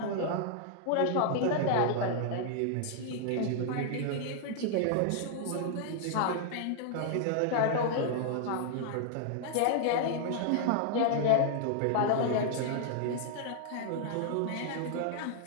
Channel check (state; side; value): different; both; correlation -0.01